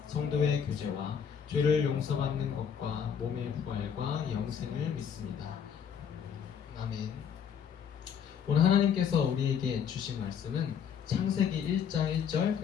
성도의 교제와 죄를 용서받는 것과 몸의 부활과 영생을 믿습니다. 아멘. 오늘 하나님께서 우리에게 주신 말씀은 창세기 1장 1절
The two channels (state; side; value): quieter; right; 7.7 dB